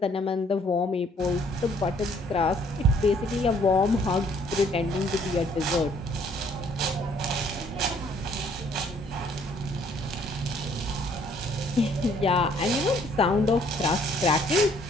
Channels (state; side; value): normal; both; correlation 0.63